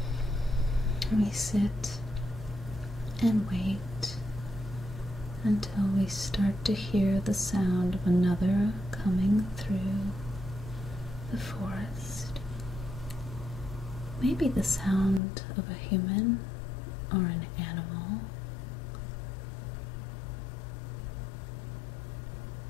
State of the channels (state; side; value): drops out; right; at 15.2 s